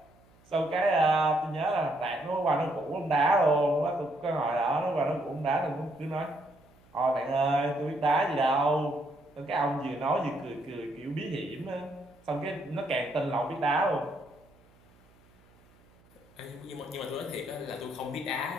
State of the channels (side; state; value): right; noise; hum, 30 dB below the sound